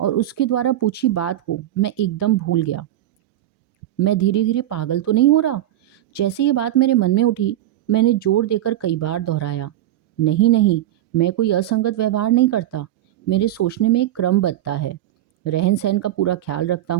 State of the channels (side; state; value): left; quieter; 13.3 dB